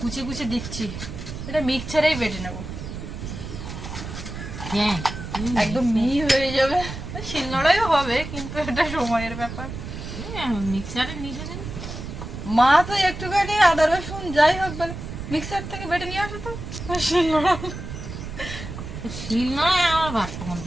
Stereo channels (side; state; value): right; noise; rumble, 8 dB below the sound